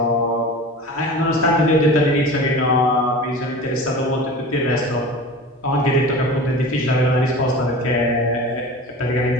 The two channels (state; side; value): normal; both; correlation 0.35